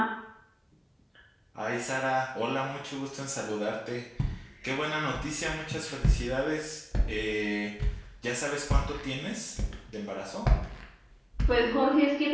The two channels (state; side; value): identical; both; correlation 1.00